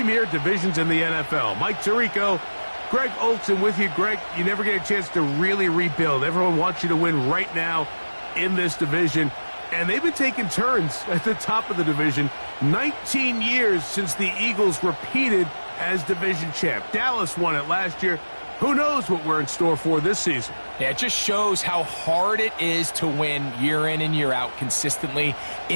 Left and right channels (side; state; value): both; inverted; correlation -1.00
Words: divisions in the NFL. Mike Tirico, Greg Olson with you. Greg, you never get a chance to really rebuild. Everyone wants you to win right now in this division. And they've been taking turns at the top of the division. 19 years since the Eagles repeated as division champ. Dallas won it last year. Who knows what we're in store for this season? Yeah, it just shows how hard it is to win year in and year out consistently